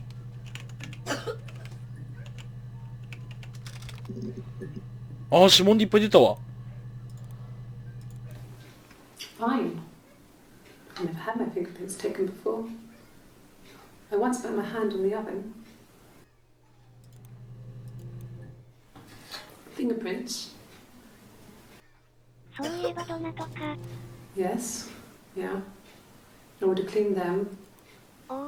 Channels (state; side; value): identical; both; correlation 1.00